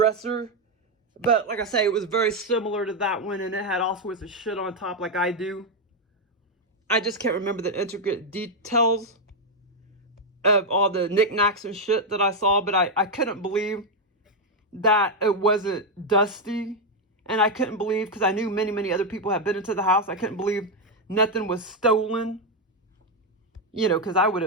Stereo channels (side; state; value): both; normal; correlation 0.03